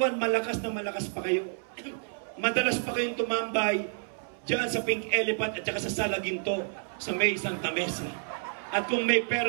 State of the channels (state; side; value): silent; left; 58 dB below the other